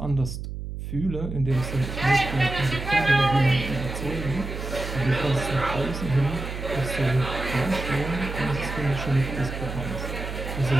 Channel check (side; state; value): right; noise; hum, 7 dB below the sound